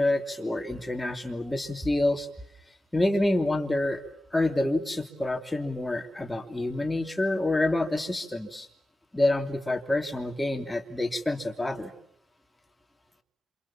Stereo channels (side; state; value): both; normal; correlation 0.95